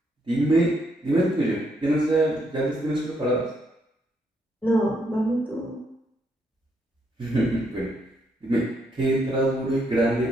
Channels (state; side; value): normal; both; correlation 0.75